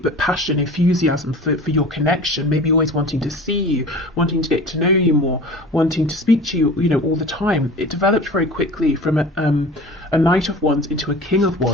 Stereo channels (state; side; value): normal; both; correlation 0.39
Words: passion, enthusiasm for your connection. Maybe always wanting to see you, wanting to get to know you more, wanting to speak to you, all the time. It developed very quickly from a Knight of Wands into a King of